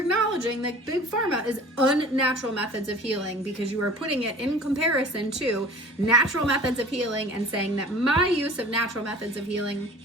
that Big Pharma is unnatural methods of healing because you are putting it in comparison to natural methods of healing and saying that my use of natural methods of healing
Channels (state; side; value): normal; both; correlation 0.44